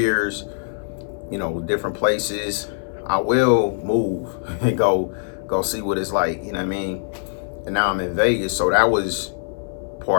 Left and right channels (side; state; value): right; silent; 56 dB below the other